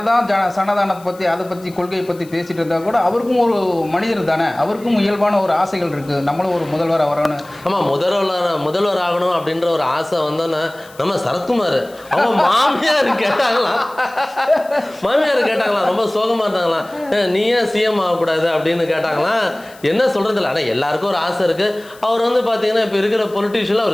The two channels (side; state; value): left; noise; hiss, 24 dB below the sound